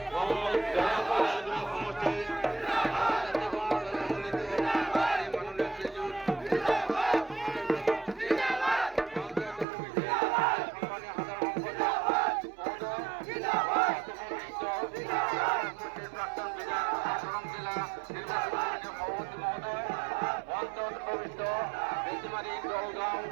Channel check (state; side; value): drops out; left; at 9.7 s